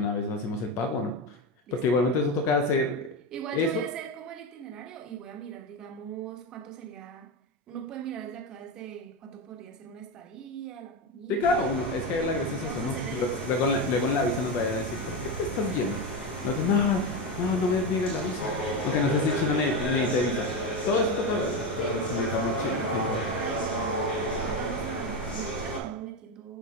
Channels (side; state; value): both; normal; correlation 0.15